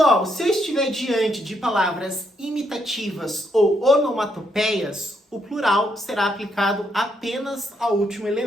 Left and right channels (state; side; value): normal; both; correlation 0.76